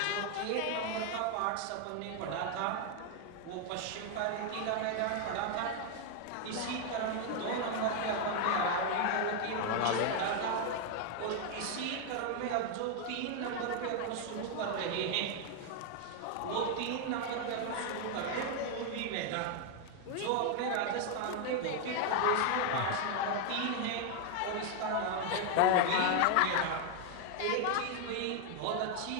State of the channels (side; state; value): both; different; correlation 0.00